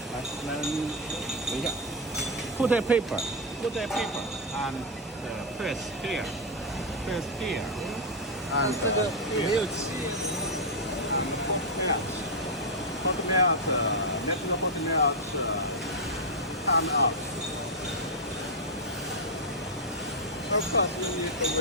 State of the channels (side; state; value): both; normal; correlation 0.00